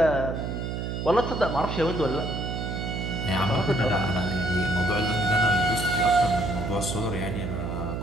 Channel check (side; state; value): right; noise; hum, 4 dB below the sound